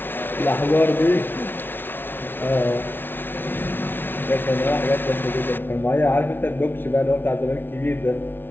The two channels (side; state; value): right; late; 0.10 ms